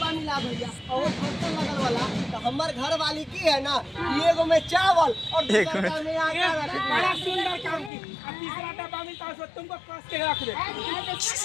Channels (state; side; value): drops out; right; at 7.9 s